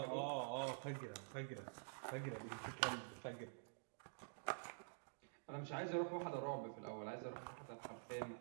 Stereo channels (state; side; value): silent; left; digital silence